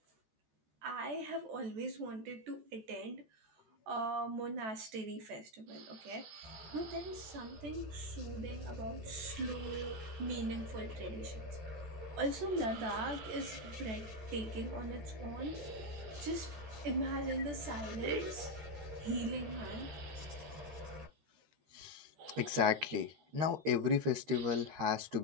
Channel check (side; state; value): left; late; 14 ms